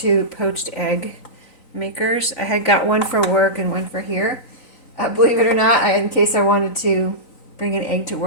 poached egg makers. I had got one for work and one for here. Believe it or not, in case I wanted to bring an egg to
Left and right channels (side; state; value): right; late; 3.9 ms